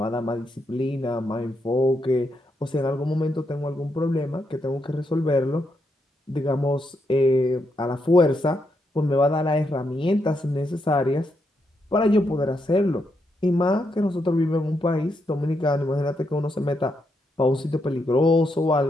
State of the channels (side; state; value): both; normal; correlation 0.81